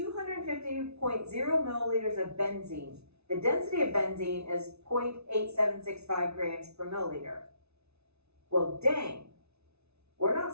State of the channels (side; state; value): left; late; 0.80 ms